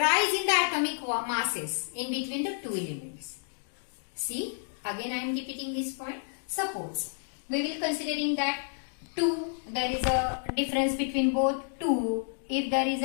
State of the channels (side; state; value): right; silent; digital silence